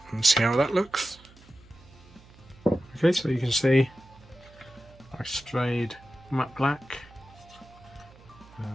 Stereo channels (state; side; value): noise; right; hum, 24 dB below the sound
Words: and see how that looks. Okay, so you can see I sprayed matte black,